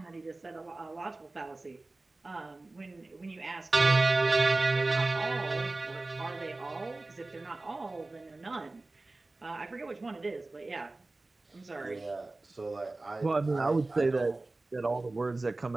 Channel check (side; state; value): left; quieter; 3.1 dB